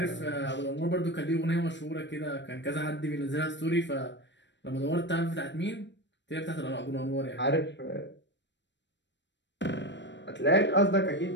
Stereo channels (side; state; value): right; late; 0.52 ms